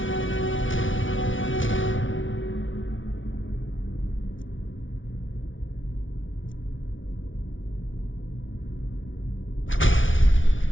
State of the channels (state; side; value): late; right; 0.56 ms